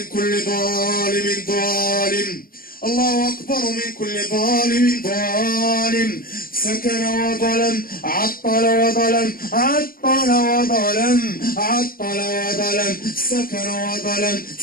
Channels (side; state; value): right; late; 0.42 ms